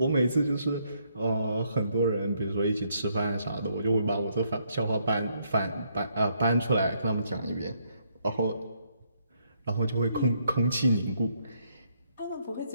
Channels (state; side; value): inverted; both; correlation -0.73